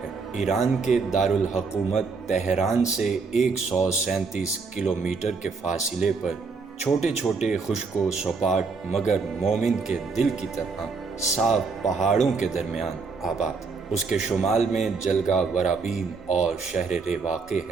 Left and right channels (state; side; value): quieter; left; 4.6 dB